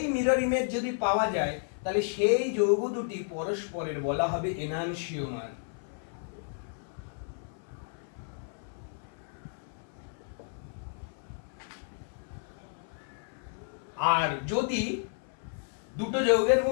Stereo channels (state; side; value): silent; right; 56 dB below the other